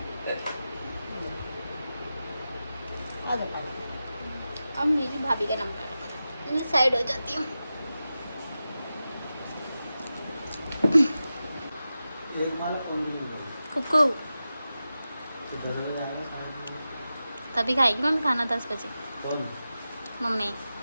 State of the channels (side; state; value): both; inverted; correlation -0.93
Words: आ जाओ। अब मेरी भाभी का नंबर, मैं साइड हो जाती हूँ। एक माला कौन नहीं कुकू तो 10 बजे आएगा, 10:30 तभी खाएगी मम्मी खाना 10 बजे। कौन मम्मी